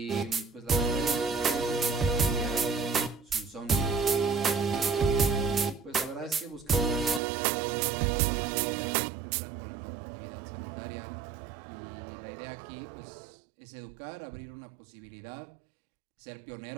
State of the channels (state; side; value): drops out; left; at 7.2 s